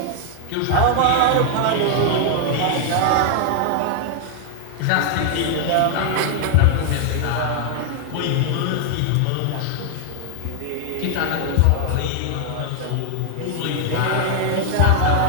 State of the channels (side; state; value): both; different; correlation 0.00